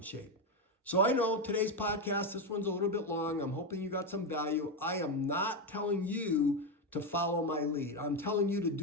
shape. So I know today's podcast, this one's a little bit long. I'm hoping you got some value. I am not telling you to follow my lead. I'm telling you to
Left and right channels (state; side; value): normal; both; correlation 0.09